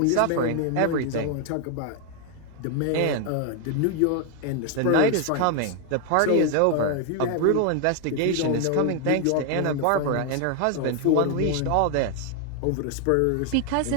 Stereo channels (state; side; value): different; both; correlation 0.00